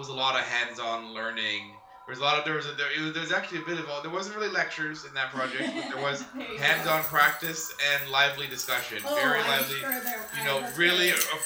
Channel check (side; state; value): both; identical; correlation 1.00